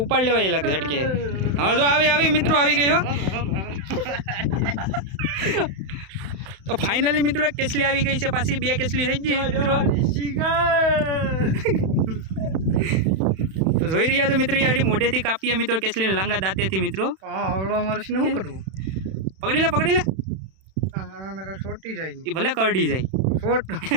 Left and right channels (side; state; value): left; late; 31 ms